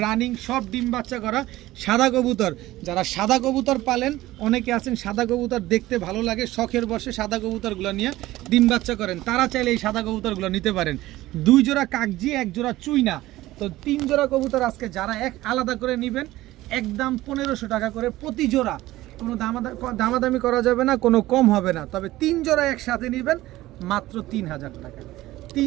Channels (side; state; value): left; quieter; 16.8 dB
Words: রানিং, সব ডিম বাচ্চা করা সাদা কবুতর। যারা সাদা কবুতর পালেন, অনেকে আছেন সাদা কবুতর দেখতে ভালো লাগে, শখের বসে সাদা কবুতরগুলো নিয়ে ডিম বাচ্চা করেন, তারা চাইলে এই সাদা কবুতরগুলো নিতে পারেন। 2 জোড়া কাকজি, 1 জোড়া চুইনা। তো 3 জোড়া কবুতর আজকে যারা এক আলাদা করে নেবেন, একদম 1500 টাকা করে প্রতি জোড়া। কোনো দামাদামি করা যাবে না, কোনো কম হবে না। তবে 3 জোড়া একসাথে নেবেন মাত্র 3000 টাকা।